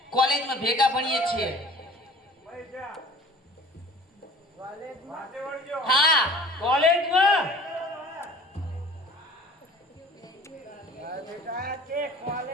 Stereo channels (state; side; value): normal; both; correlation 0.46